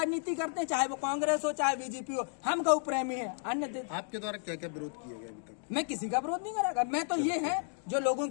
करते हैं, चाहे वो कांग्रेस हो चाहे बीजेपी हो। हम गौ प्रेमी हैं। अन्य आपके द्वारा क्या क्या विरोध किए गए अभी तक? मैं किसी का विरोध नहीं करेगा। मैं तो ये है, जो लोगों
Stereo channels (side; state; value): right; silent; 56 dB below the other